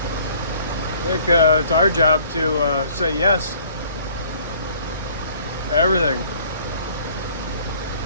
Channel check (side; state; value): both; inverted; correlation -0.56